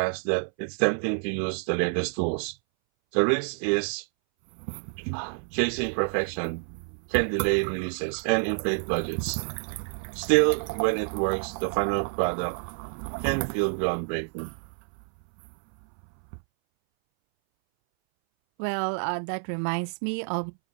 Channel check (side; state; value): left; silent; 59 dB below the other